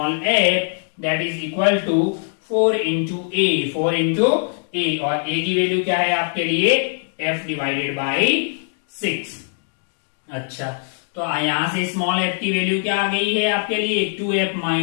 f that is equal to 4 into A, 4 into A, और a की वैल्यू क्या है आपके लिए, f डिवाइडेड बाई 6। अच्छा तो यहां से स्मॉल f की वैल्यू क्या आ गई है आपके लिए, 2F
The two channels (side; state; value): right; silent; digital silence